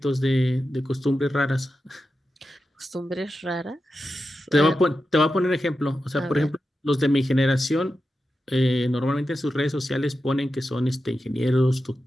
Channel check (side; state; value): both; normal; correlation 0.90